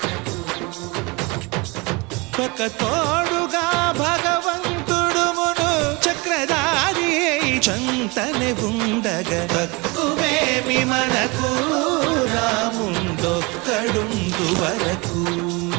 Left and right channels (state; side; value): quieter; left; 26.9 dB